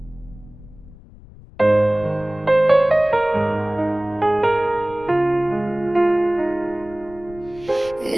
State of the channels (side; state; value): left; noise; rumble, 20 dB below the sound